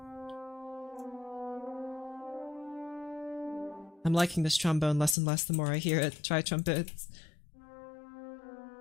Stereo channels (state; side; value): drops out; right; at 5.2 s